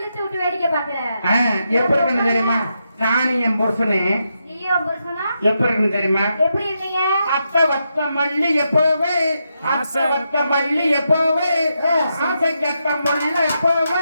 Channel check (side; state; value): both; inverted; correlation -0.84